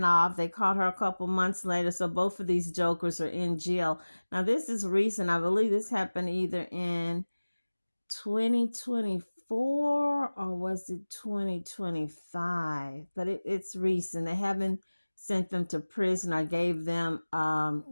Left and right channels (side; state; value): both; inverted; correlation -1.00